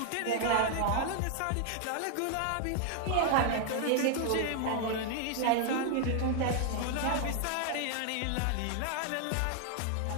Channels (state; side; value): different; both; correlation 0.00